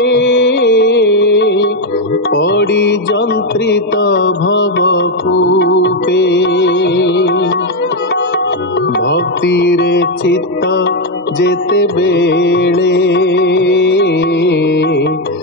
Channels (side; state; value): both; normal; correlation 0.04